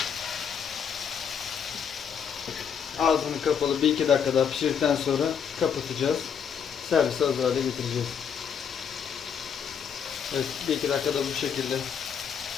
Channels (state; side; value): quieter; right; 7.4 dB